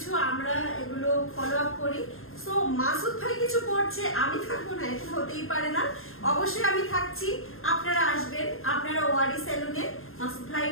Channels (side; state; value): right; late; 0.61 ms